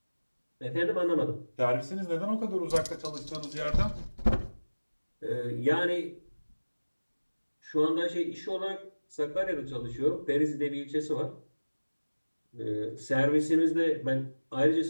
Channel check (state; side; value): inverted; both; correlation -1.00